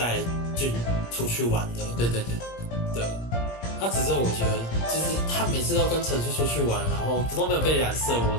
俊出去玩的。对。那只是我觉得，就是他每次都跟陈叔出去玩，然后都没有被染色，我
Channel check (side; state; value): right; late; 17 ms